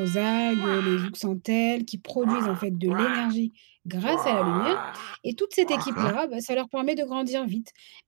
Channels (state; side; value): silent; left; digital silence